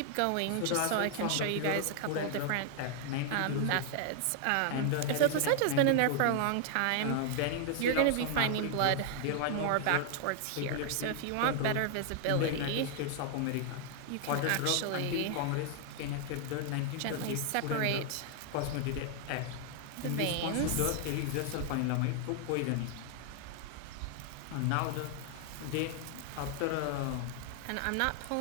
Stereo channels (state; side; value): different; both; correlation 0.00